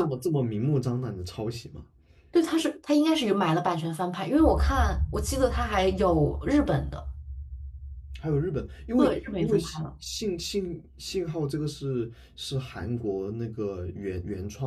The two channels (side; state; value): both; identical; correlation 1.00